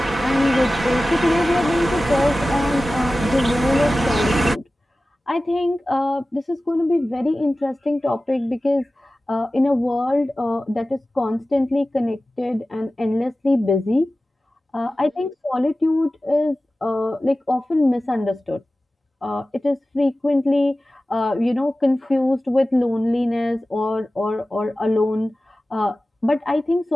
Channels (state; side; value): normal; both; correlation 0.96